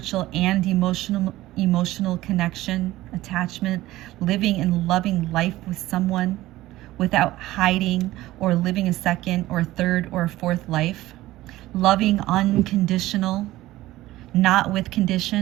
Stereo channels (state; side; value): quieter; left; 16.6 dB